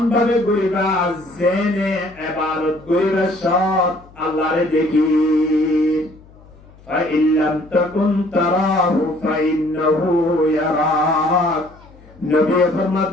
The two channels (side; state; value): left; noise; hum, 25 dB below the sound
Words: ভাবে করিবা জেনে ইবাদত করিবা সৎ আল্লাহরে দেখি فإن لم تكن تراه فإنه يراك নবী